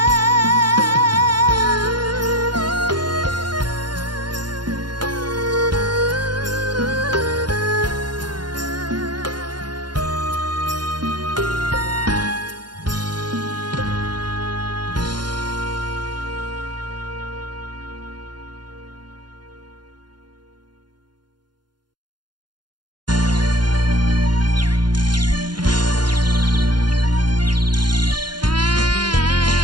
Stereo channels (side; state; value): left; late; 0.71 ms